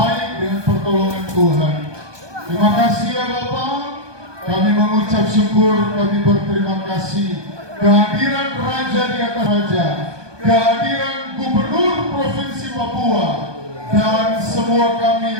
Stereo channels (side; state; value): left; late; 1.2 ms